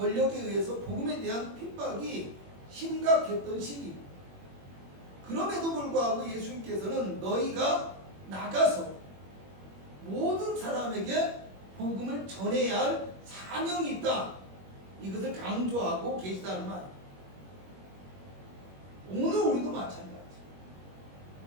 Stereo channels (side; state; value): left; late; 21 ms